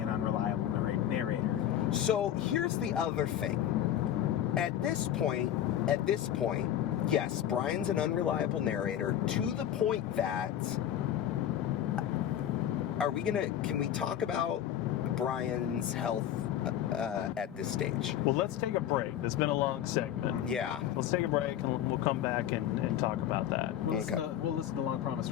an unreliable narrator. So here's the other thing. At this point, yes, Brian's an unreliable narrator to the point that can we talk about Brian's health at this stage? Well, let's take a break. It's been a long segment. Yeah. Let's take a break and we'll come back and talk about that. We'll listen to Long Promised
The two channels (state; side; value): quieter; right; 10.9 dB